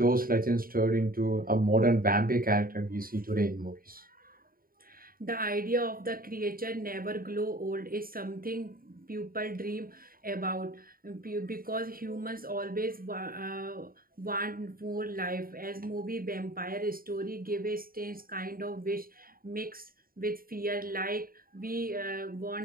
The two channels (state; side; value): late; left; 0.42 ms